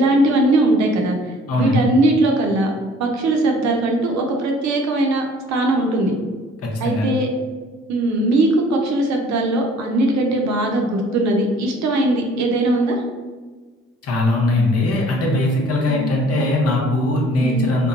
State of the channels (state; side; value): normal; both; correlation 0.54